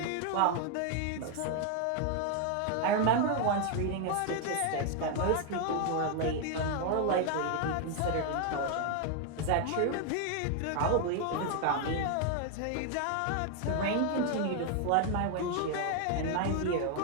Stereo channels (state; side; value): different; both; correlation 0.01